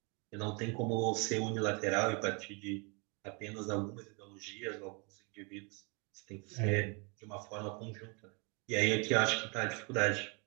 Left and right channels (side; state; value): left; quieter; 32.7 dB